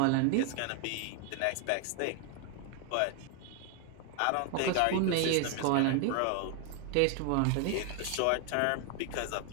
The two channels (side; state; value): both; different; correlation 0.00